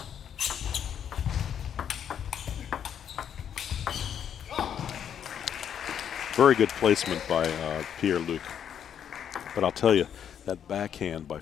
Very good placement by Pierre-Luc. But I'll tell you, that backhand by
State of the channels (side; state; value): right; quieter; 8.8 dB